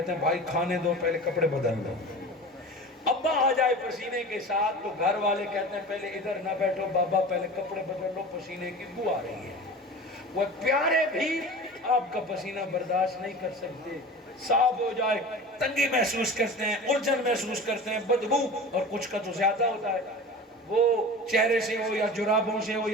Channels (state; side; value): normal; both; correlation 0.35